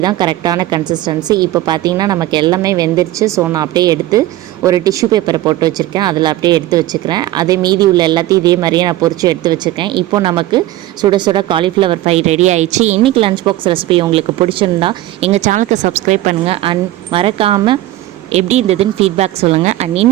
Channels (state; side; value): quieter; left; 15.4 dB